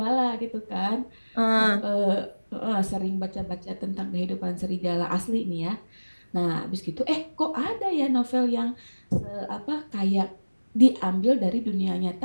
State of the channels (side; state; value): both; inverted; correlation -1.00